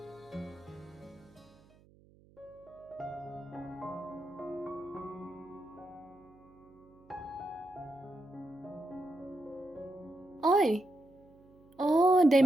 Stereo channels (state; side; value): noise; right; hum, 27 dB below the sound